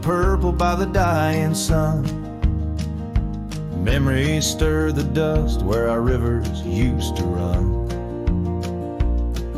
purple by the dying sun, memories stir the dust where our rivers used to run.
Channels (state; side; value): identical; both; correlation 1.00